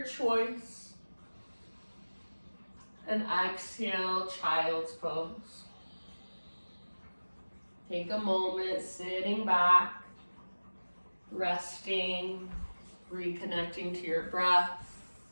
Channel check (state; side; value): inverted; both; correlation -1.00